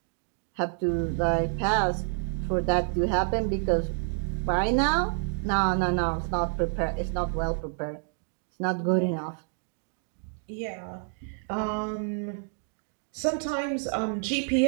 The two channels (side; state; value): left; silent; 59 dB below the other